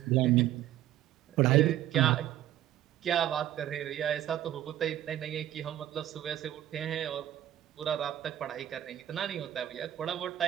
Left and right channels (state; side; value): quieter; left; 12.6 dB